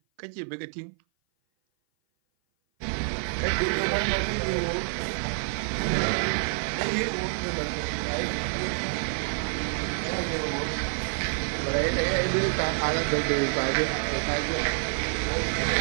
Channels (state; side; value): silent; left; 56 dB below the other